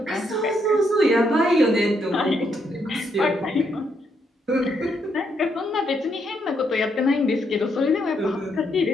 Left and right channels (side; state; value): both; normal; correlation 0.76